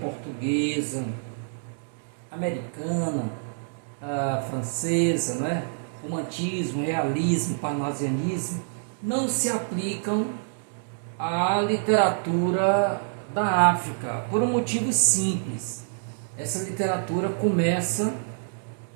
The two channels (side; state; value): left; silent; digital silence